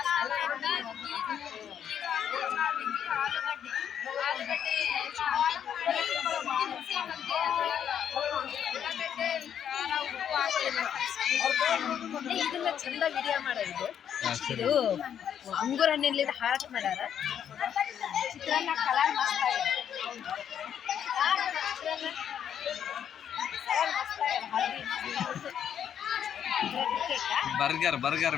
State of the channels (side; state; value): right; quieter; 9.0 dB